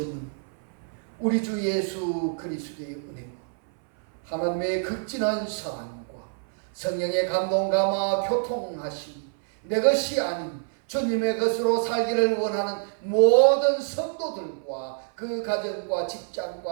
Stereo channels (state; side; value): silent; left; 59 dB below the other